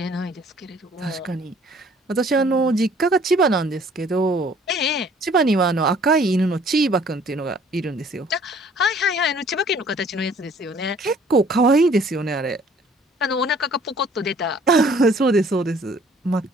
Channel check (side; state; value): both; normal; correlation 0.57